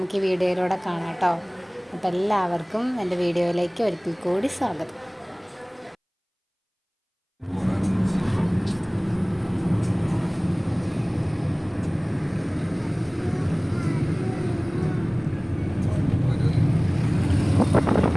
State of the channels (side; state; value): both; identical; correlation 1.00